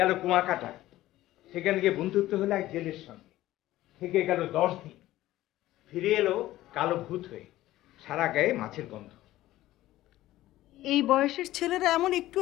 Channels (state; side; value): quieter; right; 15.5 dB